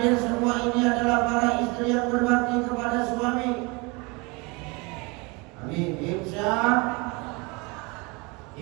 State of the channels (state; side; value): quieter; left; 27.8 dB